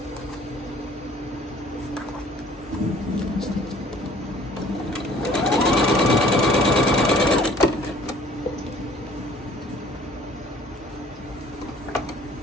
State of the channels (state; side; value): normal; both; correlation 0.54